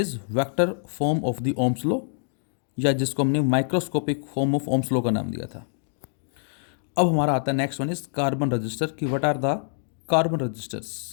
vector form of the Ohm's law, या जिसको हमने microscopic form of Ohm's law का नाम दिया था। अब हमारा आता है next one is carbon resistor की what are the carbon resistors.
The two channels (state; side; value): silent; right; digital silence